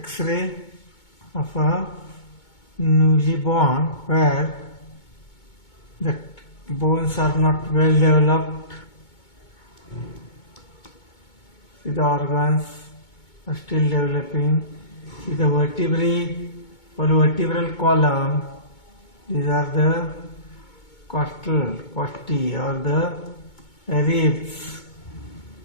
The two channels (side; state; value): right; late; 2.2 ms